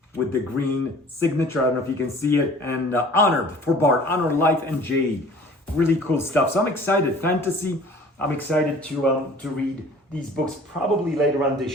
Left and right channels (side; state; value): both; normal; correlation 0.48